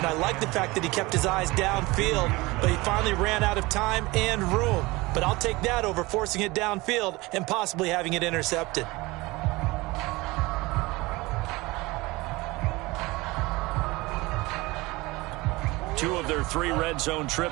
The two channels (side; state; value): left; quieter; 22.1 dB